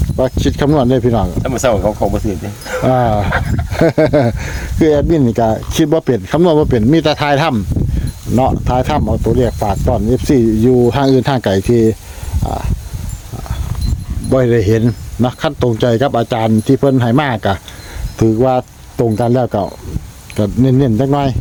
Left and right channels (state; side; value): identical; both; correlation 1.00